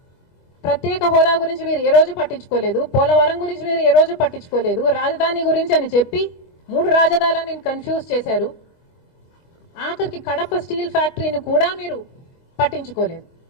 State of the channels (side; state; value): right; late; 23 ms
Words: ప్రత్యేక హోదా గురించి మీరు ఏ రోజు పట్టించుకోలేదు, పోలవరం గురించి మీరు ఏ రోజు పట్టించుకోలేదు, రాజధాని గురించి అని చెప్పి 3 రాజధానులను కన్ఫ్యూజ్ చేశారు. ఆఖరికి కడప స్టీల్ ఫ్యాక్టరీని కూడా మీరు పట్టించుకోలేదు.